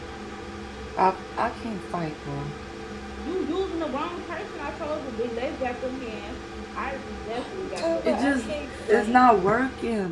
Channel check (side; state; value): both; identical; correlation 1.00